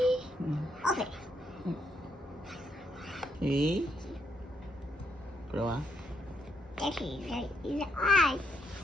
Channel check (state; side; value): normal; both; correlation 0.75